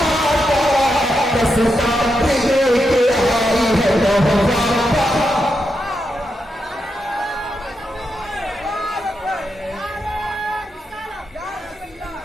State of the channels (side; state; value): both; normal; correlation 0.85